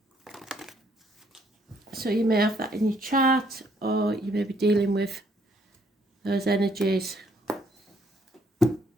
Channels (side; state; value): both; normal; correlation 0.67